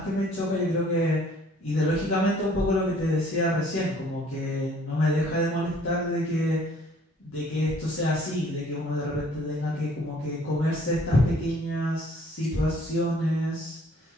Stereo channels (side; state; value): both; normal; correlation 0.58